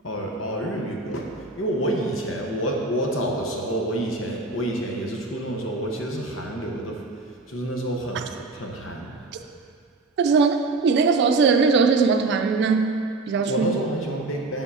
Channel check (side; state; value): left; quieter; 3.4 dB